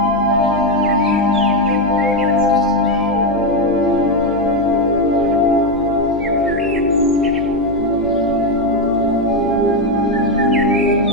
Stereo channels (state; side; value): noise; right; hum, 14 dB below the sound